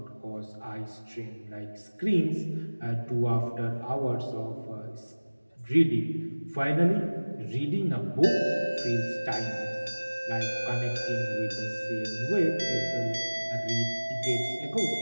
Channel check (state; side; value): inverted; both; correlation -1.00